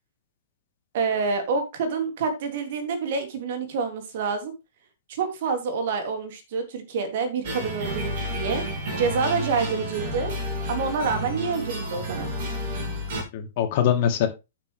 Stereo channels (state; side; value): inverted; both; correlation -0.36